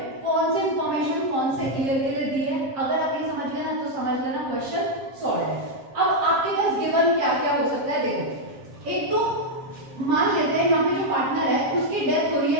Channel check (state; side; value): late; left; 7.4 ms